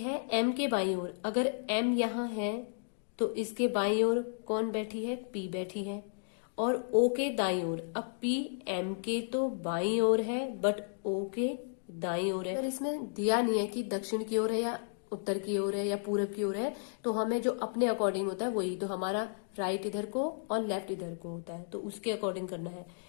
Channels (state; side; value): silent; right; digital silence